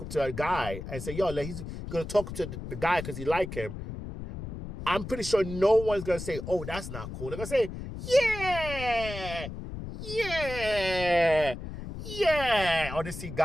up to a guy and say, yo, he's going to talk to the guy because he like him. I'm pretty sure no one's going to say, oh, that's not cool. They're going to say, yeah. Or they see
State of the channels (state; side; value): noise; left; rumble, 9 dB below the sound